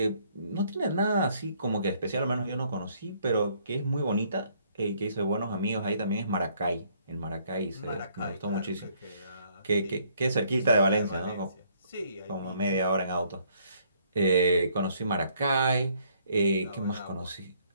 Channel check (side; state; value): both; inverted; correlation -0.65